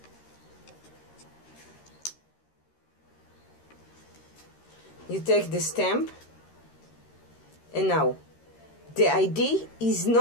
you take the stamp, and now the idea is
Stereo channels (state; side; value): late; right; 13 ms